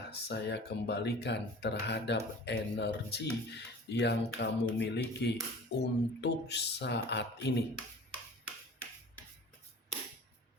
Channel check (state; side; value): normal; both; correlation 0.42